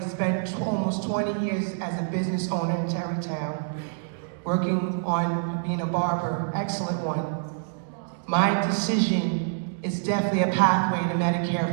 spent almost 20 years as a business owner in Tarrytown, working on being a barber, excellent one. My decision is definitely a pathway to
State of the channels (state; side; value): silent; left; digital silence